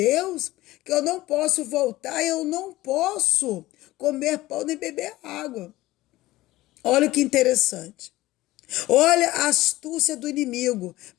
que eu não posso voltar, eu não posso comer pão nem beber água. Olha que interessante. Olha a astúcia do inimigo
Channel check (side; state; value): right; quieter; 17.5 dB